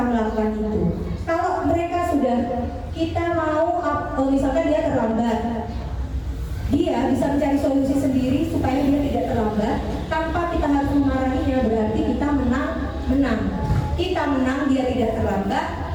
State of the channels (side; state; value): both; identical; correlation 1.00